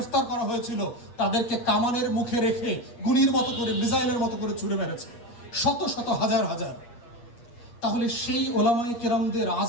করা হয়েছিল তাদেরকে কামানের মুখে রেখে গুলির মতো করে মিসাইলের মতো করে ছুড়ে মেরেছে, শত শত হাজার হাজার। তাহলে সেই ওলামায়ে কেরামদের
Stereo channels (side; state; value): right; late; 8.4 ms